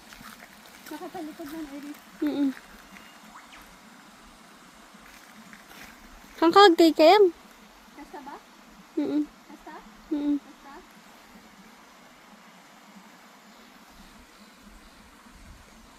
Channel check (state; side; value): identical; both; correlation 1.00